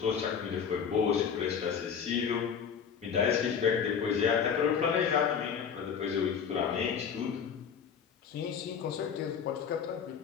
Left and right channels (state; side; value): quieter; right; 7.1 dB